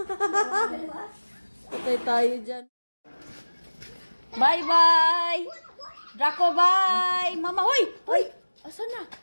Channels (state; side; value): inverted; both; correlation -1.00